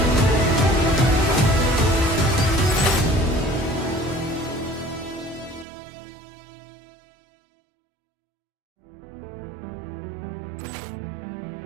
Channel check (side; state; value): left; drops out; at 5.7 s